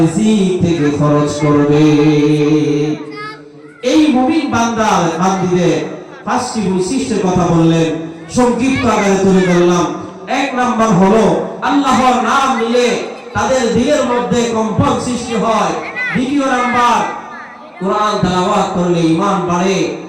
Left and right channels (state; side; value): identical; both; correlation 1.00